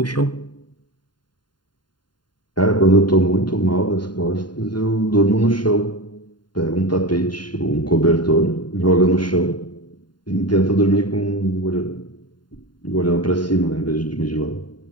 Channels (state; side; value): late; right; 0.71 ms